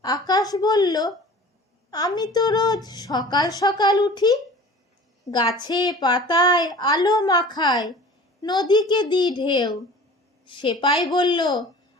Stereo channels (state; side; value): normal; both; correlation 0.42